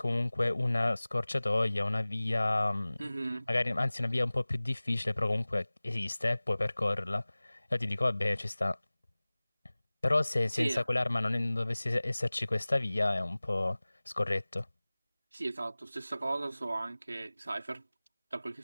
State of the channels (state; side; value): inverted; both; correlation -0.99